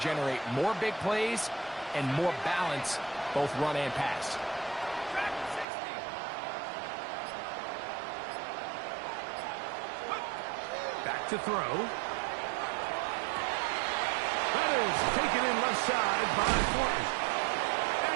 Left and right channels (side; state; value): left; drops out; at 5.7 s